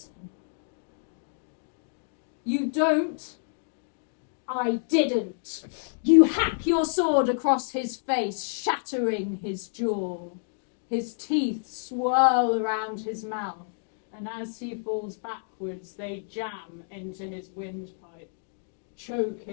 You don't. I didn't. You hack your sword across his face, shattering his jaw. His teeth swirl around his mouth, and as he falls backwards, they jam into his windpipe,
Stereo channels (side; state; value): right; silent; digital silence